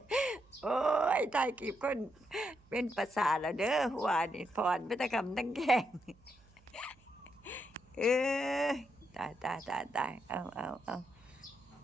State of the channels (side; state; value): right; noise; hum, 29 dB below the sound